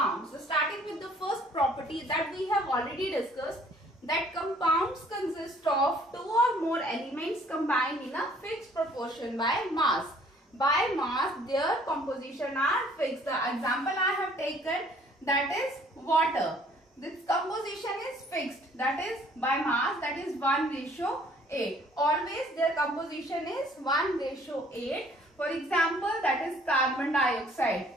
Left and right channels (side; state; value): both; normal; correlation 0.58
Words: So starting with the first property that we have already discussed, that compounds consist of 2 or more elements combined in a fixed proportion by mass. By mass, their composition are fixed. The example I have taken, that is water. This composition is fixed, that is by mass, that is 1:8. Always their composition is 1:8. For example, that is carbon dioxide.